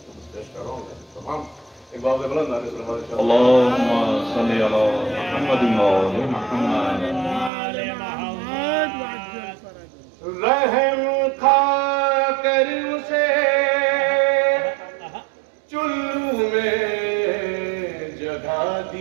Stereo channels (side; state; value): left; drops out; at 7.5 s